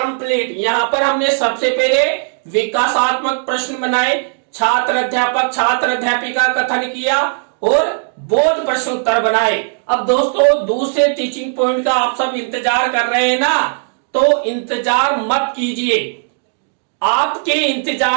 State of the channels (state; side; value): silent; left; digital silence